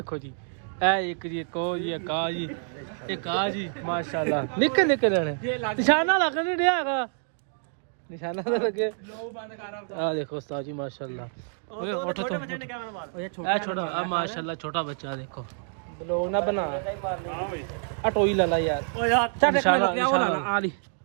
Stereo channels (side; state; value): left; silent; digital silence